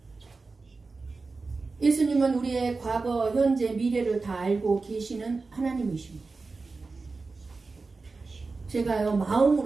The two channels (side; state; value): left; quieter; 4.0 dB